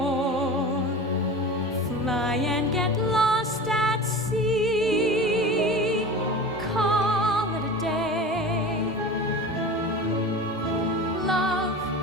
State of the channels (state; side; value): normal; both; correlation 0.33